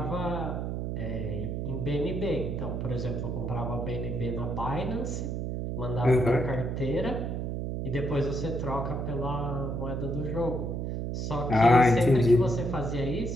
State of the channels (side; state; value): right; noise; hum, 3 dB below the sound